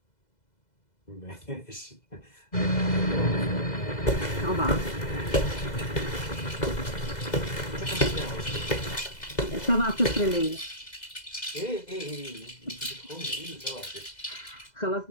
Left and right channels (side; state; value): right; late; 2.0 ms